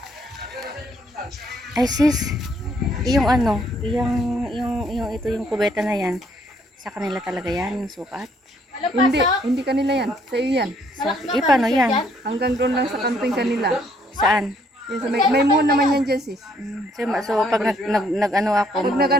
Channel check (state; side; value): normal; both; correlation 0.67